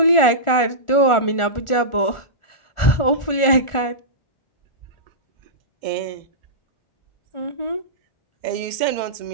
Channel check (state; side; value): late; right; 1.4 ms